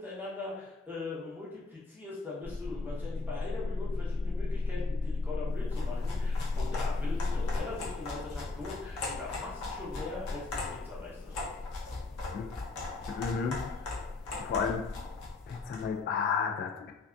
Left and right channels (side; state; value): right; quieter; 3.6 dB